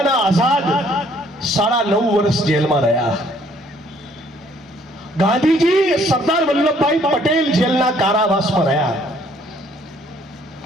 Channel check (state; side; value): normal; both; correlation 0.62